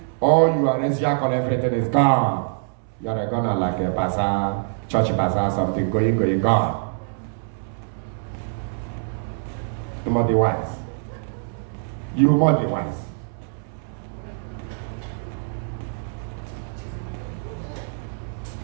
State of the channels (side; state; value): left; silent; 62 dB below the other